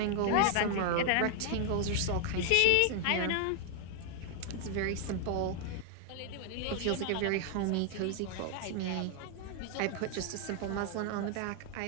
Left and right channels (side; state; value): both; different; correlation 0.00